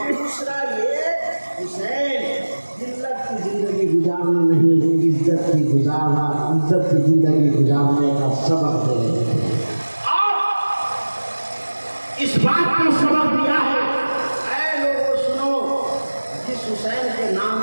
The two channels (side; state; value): both; inverted; correlation -1.00